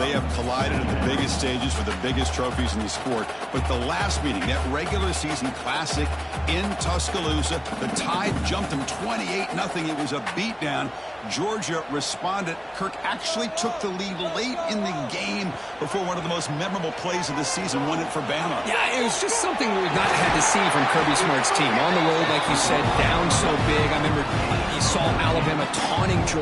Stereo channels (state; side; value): identical; both; correlation 1.00